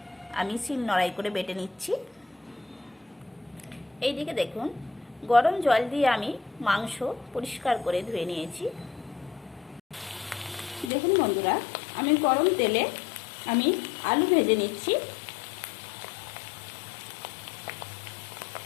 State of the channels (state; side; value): drops out; right; at 10.9 s